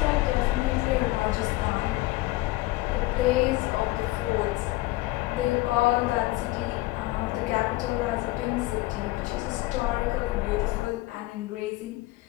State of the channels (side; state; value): right; quieter; 19.6 dB